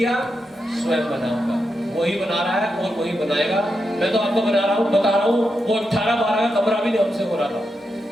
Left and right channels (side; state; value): both; normal; correlation 0.86